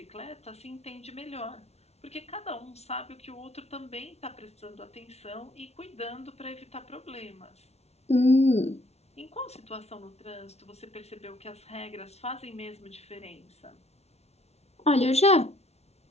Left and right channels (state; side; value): late; right; 0.31 ms